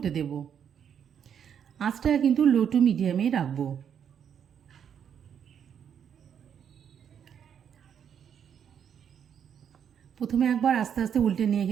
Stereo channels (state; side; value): quieter; left; 8.3 dB